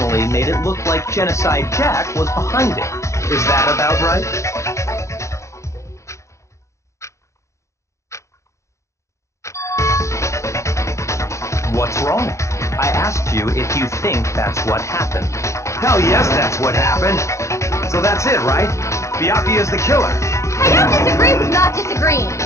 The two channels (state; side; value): late; right; 0.14 ms